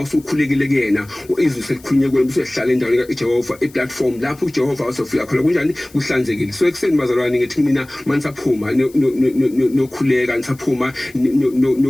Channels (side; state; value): left; noise; hiss, 25 dB below the sound